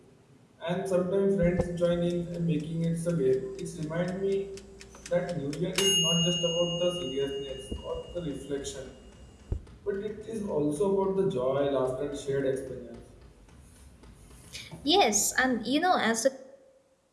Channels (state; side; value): identical; both; correlation 1.00